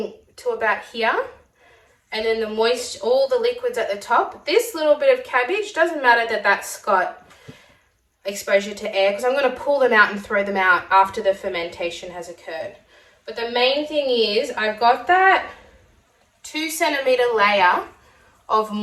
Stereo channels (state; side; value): identical; both; correlation 1.00